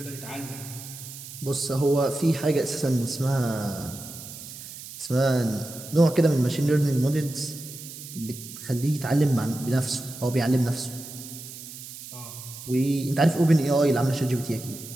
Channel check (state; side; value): noise; right; hiss, 13 dB below the sound